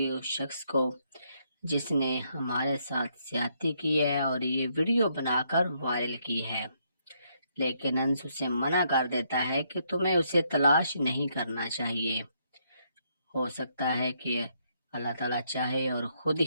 اس شخص کو جس نے ہمارے ساتھ زیادتی کی ہے اور یہ ویڈیو بنا کر وائرل کی ہے۔ لیکن انس اسے منع کر دیتا ہے کہ تمہیں اسے تلاش نہیں کرنا چاہیے، ہو سکتا ہے کہ اللہ تعالیٰ چاہے اور خود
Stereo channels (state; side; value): inverted; both; correlation -0.74